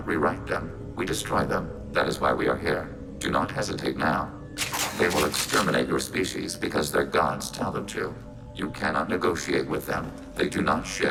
rewrite them, we destroy them. That is why we are here. Do not hesitate now. They will exterminate your species because their gods tell them to. You cannot negotiate with them. They do not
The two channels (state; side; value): identical; both; correlation 1.00